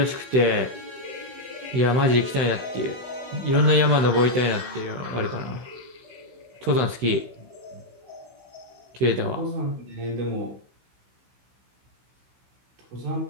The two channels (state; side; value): late; left; 16 ms